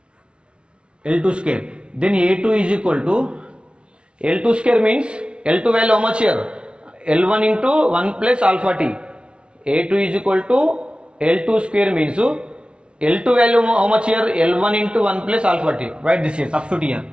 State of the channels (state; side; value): late; left; 0.057 ms